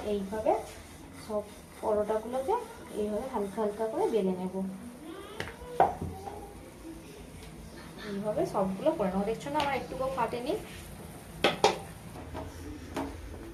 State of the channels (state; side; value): identical; both; correlation 1.00